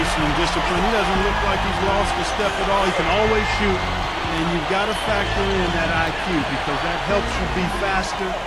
and discipline. He doesn't look like he's lost a step at all. He can always shoot, and you've got to factor in that IQ because that helps you be faster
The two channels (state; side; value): identical; both; correlation 1.00